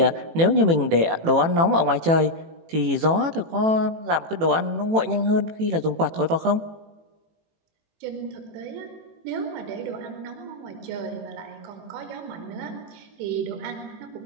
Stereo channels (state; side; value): late; left; 18 ms